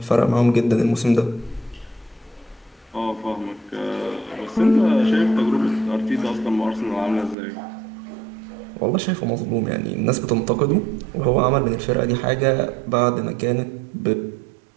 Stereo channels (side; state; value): left; drops out; at 7.4 s